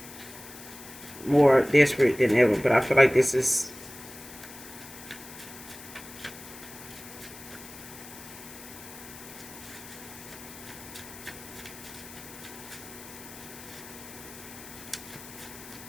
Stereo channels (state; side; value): noise; left; hiss, 15 dB below the sound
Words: More desperate than ever. But I feel like this is